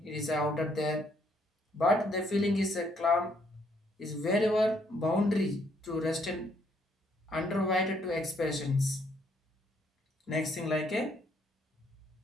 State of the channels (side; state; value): both; normal; correlation 0.70